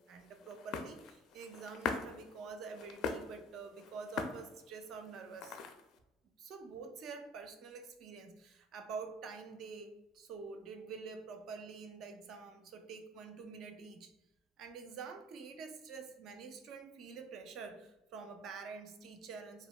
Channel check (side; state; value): both; normal; correlation 0.47